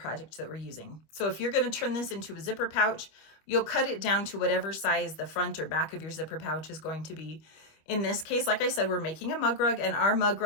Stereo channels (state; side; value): late; right; 25 ms